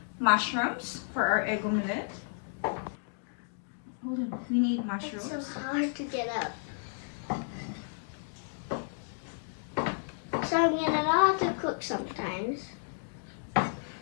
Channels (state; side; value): silent; right; digital silence